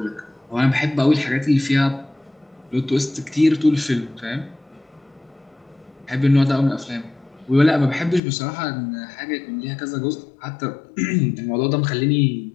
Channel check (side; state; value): right; drops out; at 8.2 s